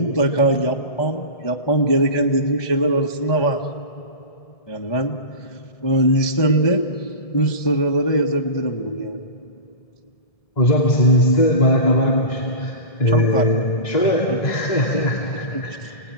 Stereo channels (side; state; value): right; late; 1.7 ms